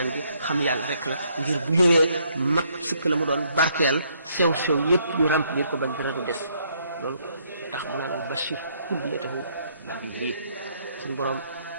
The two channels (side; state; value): both; inverted; correlation -0.69